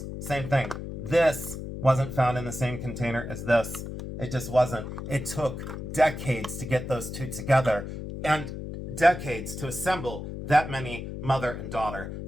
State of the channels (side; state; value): left; noise; hum, 8 dB below the sound